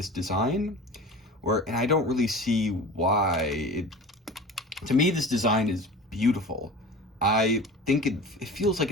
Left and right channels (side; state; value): both; normal; correlation 0.36